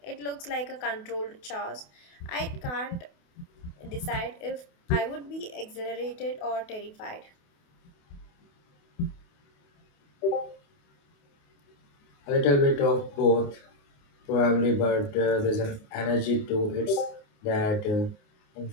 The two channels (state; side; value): late; right; 28 ms